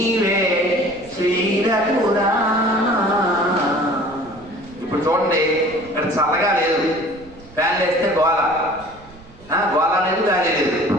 శ్రీరఘురా. ఇప్పుడు చూడండి, ఇక్కడ చల్లగా లేదు, ఫ్యాన్లు వేస్తే గోల, గోల లేదు, గాలి లేదు.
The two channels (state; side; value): noise; right; rumble, 22 dB below the sound